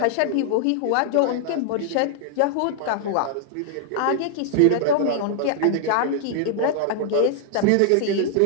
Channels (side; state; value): both; different; correlation -0.01